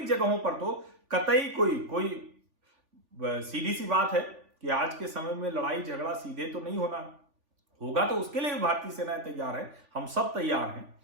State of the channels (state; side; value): late; left; 3.5 ms